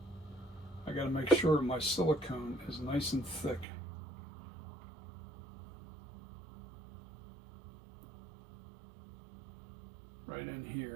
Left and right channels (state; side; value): drops out; left; at 3.7 s